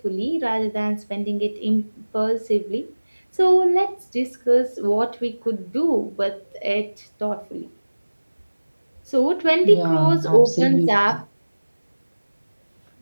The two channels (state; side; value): inverted; both; correlation -1.00